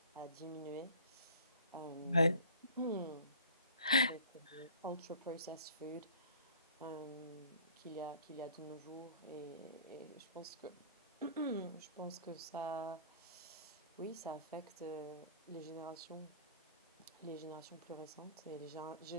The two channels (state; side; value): inverted; both; correlation -0.48